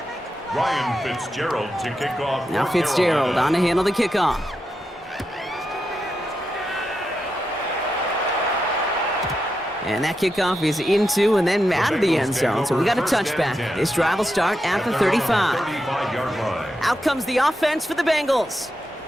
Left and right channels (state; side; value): normal; both; correlation 0.87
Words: 3. Ryan Fitzgerald to kick off. Now Fitzgerald on to handle the kickoff. And that kickoff is into and then out of the end zone. So we got a touchback. This drive will start at the 35. Out comes the offense for the Bengals.